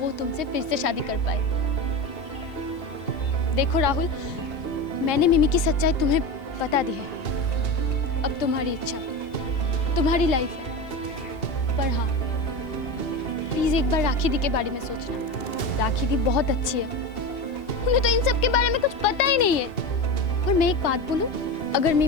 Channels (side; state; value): right; late; 2.7 ms